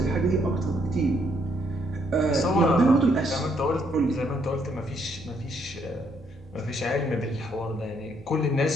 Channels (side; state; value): both; normal; correlation 0.72